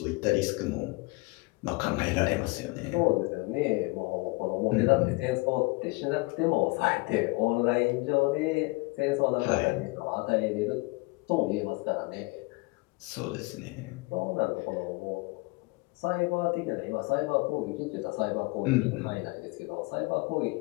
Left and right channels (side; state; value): right; quieter; 25.6 dB